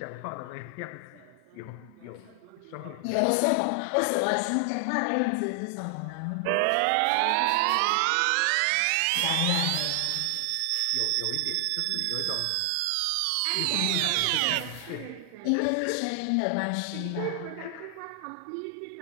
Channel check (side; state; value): both; different; correlation 0.00